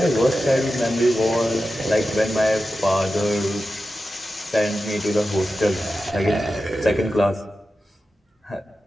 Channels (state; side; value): normal; both; correlation 0.92